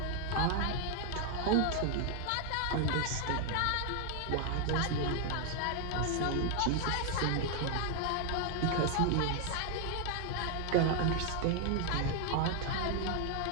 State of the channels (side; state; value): both; different; correlation 0.00